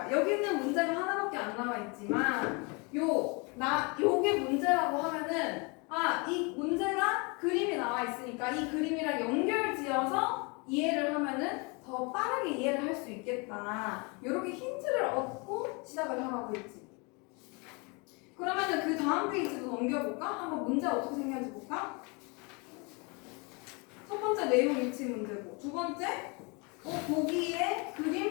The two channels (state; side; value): quieter; right; 30.6 dB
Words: 여기는 문제가 하나밖에 안 나와 있지만 요게 문제라고 하면은 이 문제가 그림이 나와 있으니까 이 그림이랑 연결지어서 이해를 하면은 더 빠르게 이해를 할 수 있겠다. 이렇게 힌트를 얻고 시작을 하라고 했지. 그러면은 그 다음 페이지도 넘겨볼까? 한번 문제 어떻게 생겼는지 볼까? 첫 번째 내용 일치 문제고, 두 번째 보기에